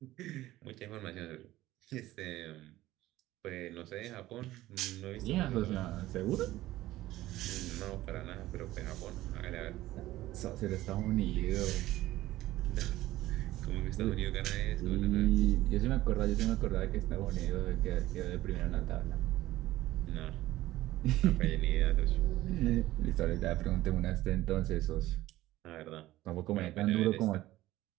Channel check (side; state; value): left; quieter; 16.1 dB